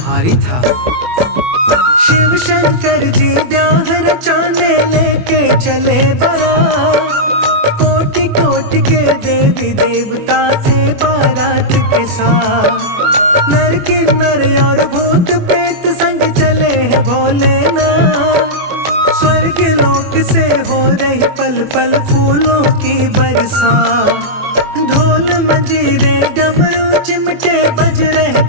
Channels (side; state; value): left; late; 24 ms